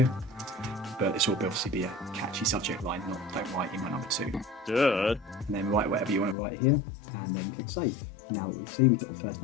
But this will obviously be a catchy subject line, not don't write email number 2. Duh. And then write whatever you want to write here, and then click save. Now that we see we've got the first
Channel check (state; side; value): drops out; right; at 6.4 s